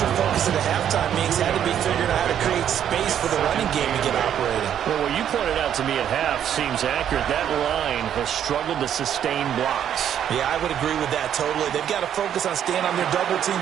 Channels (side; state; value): left; quieter; 9.7 dB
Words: focus at the halftime means had to be figuring out how to create space for the running game to get operating. Well, what you pointed out to me at half seems accurate. That line has struggled to sustain blocks. Yeah, I would agree with that totally. They've got to focus on staying on their double